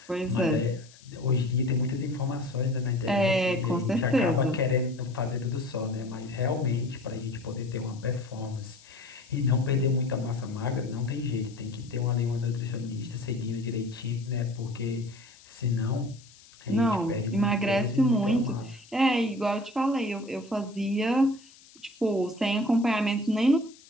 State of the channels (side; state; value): left; noise; hiss, 24 dB below the sound